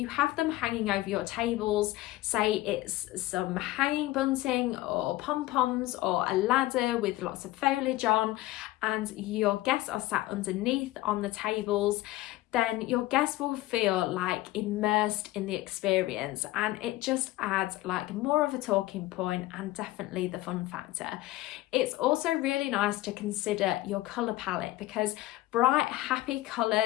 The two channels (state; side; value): quieter; right; 17.2 dB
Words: have them hanging over your tables, say it's some hanging bunting or pom-poms or a ladder with lots of foliage on, and your guests are sat underneath on the tables, then your guests will feel like immersed in the experience, and it just adds like more of a talking point and definitely the fun factor. It's also really nice to consider your colour palette because bright, happy